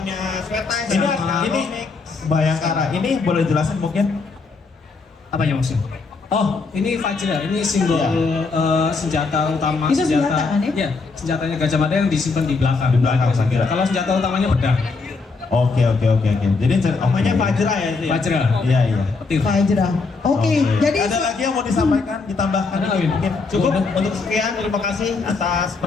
Sweta. Ini Bayangkara. Ini boleh jelasin mungkin? Apa yang maksudnya? Oh, ini Vajra, ini simbol senjata utama. Itu senjata kan ya? Iya, senjatanya Gajah Mada yang disimpan di belakang. Di belakang, saya kira. Kalau senjata utamanya pedang. Oke. Jadi Namanya Fajra ya itu ya. Vajra. Iya, iya. Petir. Fajra. Oke, jadi ada lagi yang mau disampaikan, ditambahkan Ada, Win? mungkin? Cukup untuk sekian, terima kasih atas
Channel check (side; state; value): right; quieter; 4.2 dB